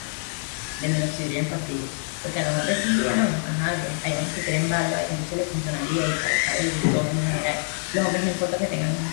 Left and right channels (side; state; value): right; silent; 62 dB below the other